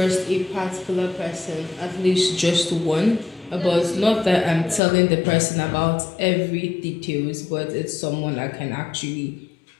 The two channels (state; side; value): drops out; right; at 4.8 s